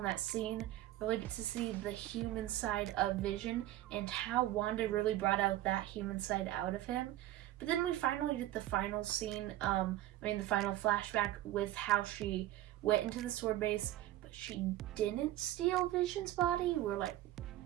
that scene. Really get to see the human side of Vision and how Wanda really brought out that human side out of him. But then we finally get the final scene, the final flashback with how she went into the sword base, but she didn't steal Vision's body. We're like,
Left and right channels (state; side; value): quieter; left; 14.6 dB